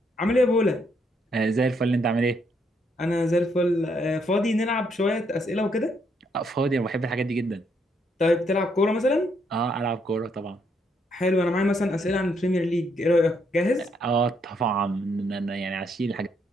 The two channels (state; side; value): normal; both; correlation 0.73